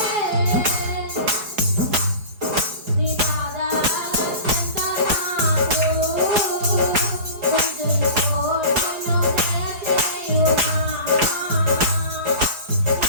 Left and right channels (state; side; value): late; left; 4.8 ms